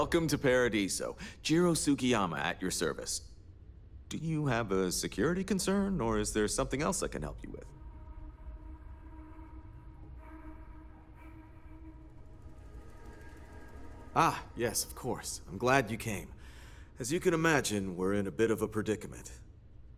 to Paradiso. Jiro Sugiyama at your service. Do you have a security concern, or is there something else I can help you with? Ah, yes, of course. I'm glad you came. As you can imagine, we're in a bit of a predicament.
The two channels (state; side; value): identical; both; correlation 1.00